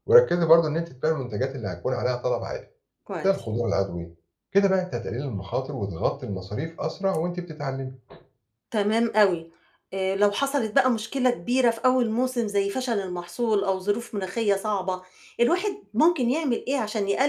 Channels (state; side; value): identical; both; correlation 1.00